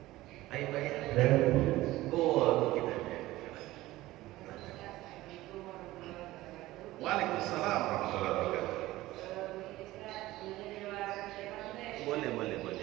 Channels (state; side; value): quieter; left; 17.2 dB